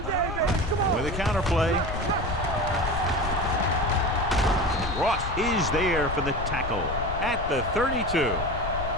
yeah, baby. Come on. With a counter play. Ross is there for the tackle at the 32.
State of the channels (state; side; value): noise; left; rumble, 6 dB below the sound